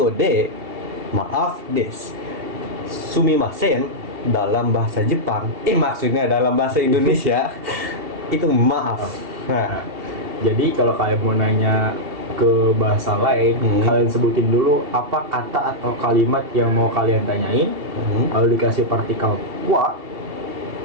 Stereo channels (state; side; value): late; left; 2.7 ms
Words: Maaf des. Sumimasen dalam bahasa Jepang, maksudnya dalam bahasa Indonesia itu maaf. Nah, jadi kalau kalian mau nanya ke bahasa lain, kalian sebutin dulu apa kata atau kalimat yang mau kalian tanyain, lalu dikasih partikel wa,